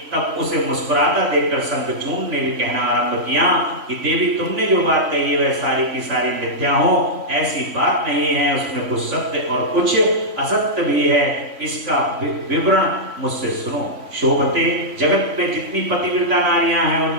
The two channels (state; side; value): late; left; 3.4 ms